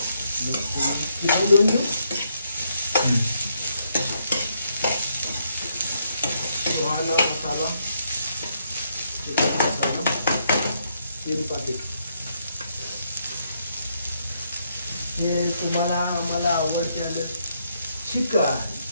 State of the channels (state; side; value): inverted; both; correlation -0.76